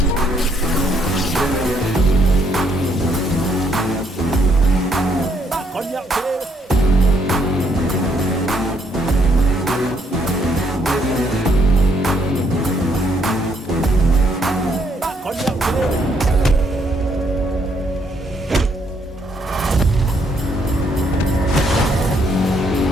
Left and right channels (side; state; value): both; normal; correlation 0.71